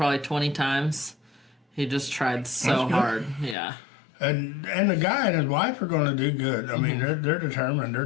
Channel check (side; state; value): right; drops out; at 3.6 s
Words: 20 times. He just tried so hard. Yeah. And the guy and his wife are going to do good. I mean, they're determined. They're